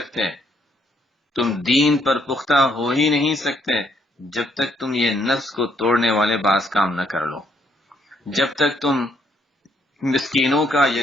تم دین پر پختہ ہو ہی نہیں سکتے جب تک تم یہ نفس کو توڑنے والے بعض کام نہ کر لو، جب تک تم مسکینوں کا،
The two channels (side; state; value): both; normal; correlation 0.71